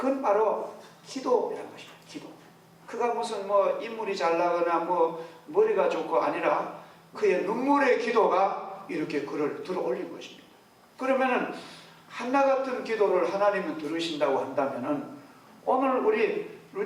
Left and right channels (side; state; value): both; identical; correlation 1.00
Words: 바로 기도라는 것입니다. 기도. 그가 무슨 뭐 인물이 잘 나거나 뭐 머리가 좋고 아니라 그의 눈물의 기도가 이렇게 그를 들어 올린 것입니다. 그러면은 한나 같은 기도를 하나님은 들으신다고 한다면은 오늘 우리